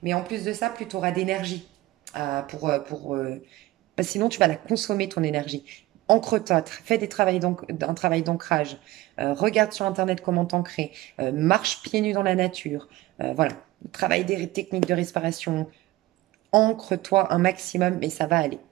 Mais en plus de ça, plus tu auras d'énergie parce que sinon, tu vas la consommer, ton énergie. Ancre-toi, fais un travail d'ancrage. Regarde sur Internet comment t'ancrer. Marche pieds nus dans la nature. Voilà. Travaille des techniques de respiration, ancre-toi un maximum, mais ça va aller.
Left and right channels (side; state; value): left; quieter; 18.2 dB